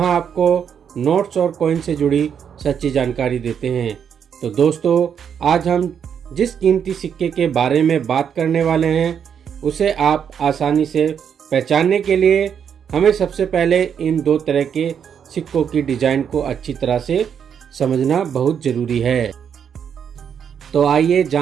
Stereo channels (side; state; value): left; quieter; 7.8 dB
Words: आपको नोट्स और कॉइन से जुड़ी सच्ची जानकारी देते हैं। तो दोस्तों, आज हम जिस कीमती सिक्के के बारे में बात करने वाले हैं उसे आप आसानी से पहचानने के लिए हमें सबसे पहले इन दो तरह के सिक्कों की डिजाइन को अच्छी तरह से समझना बहुत जरूरी है। तो आइए